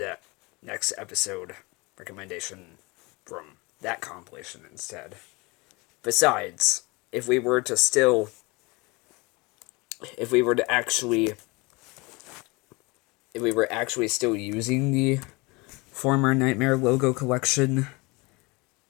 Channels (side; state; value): right; quieter; 25.8 dB